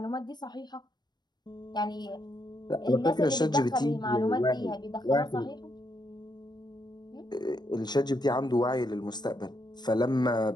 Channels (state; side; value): late; right; 0.21 ms